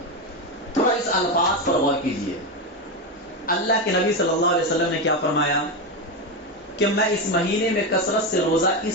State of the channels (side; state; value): both; normal; correlation 0.13